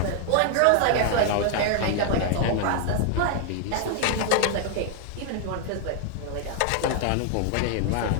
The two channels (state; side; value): different; both; correlation 0.00